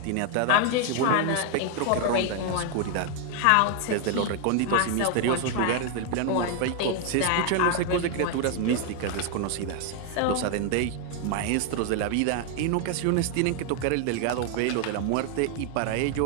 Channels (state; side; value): different; both; correlation 0.00